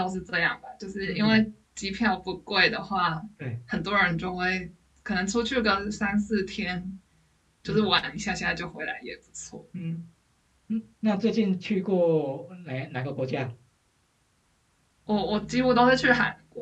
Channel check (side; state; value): both; identical; correlation 1.00